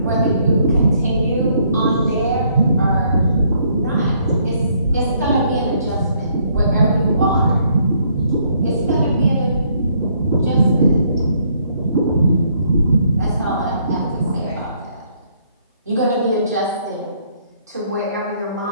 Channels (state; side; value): inverted; both; correlation -0.68